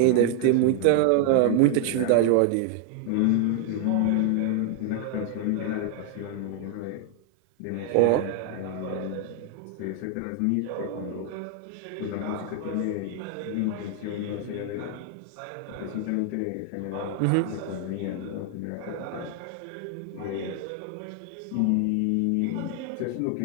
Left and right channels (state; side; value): different; both; correlation 0.00